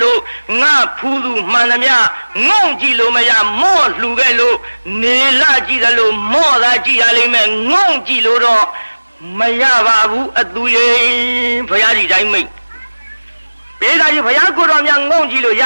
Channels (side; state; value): both; inverted; correlation -1.00